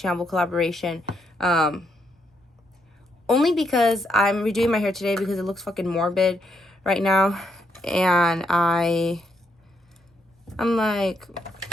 collaboration. Only because I'm redoing my hair today because it looks fucking morbid right now, and I'm like,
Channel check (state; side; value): normal; both; correlation 0.76